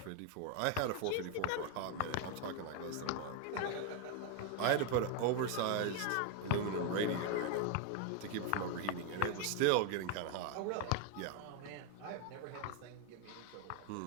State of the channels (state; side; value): different; both; correlation 0.01